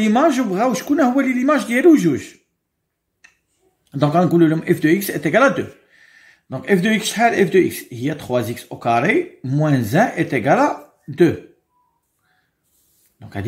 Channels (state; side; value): identical; both; correlation 1.00